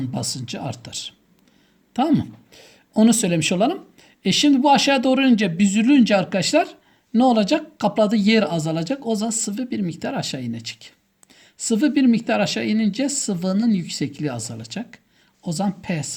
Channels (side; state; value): both; identical; correlation 1.00